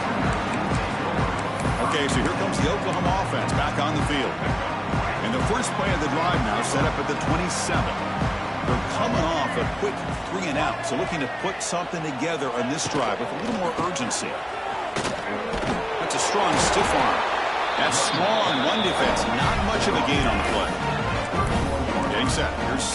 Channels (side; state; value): both; identical; correlation 1.00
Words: Okay, so here comes the Oklahoma offense back on the field. And the first play of the drive now set up at the 27. They're coming off a quick 3-and-out, so looking to put something together on this drive with a little more urgency. That's a strong stiff arm. That's small on run defense. Not much of a gain on the play. Getting set. Here's